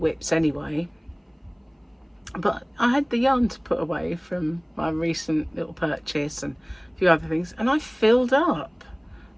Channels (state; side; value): identical; both; correlation 1.00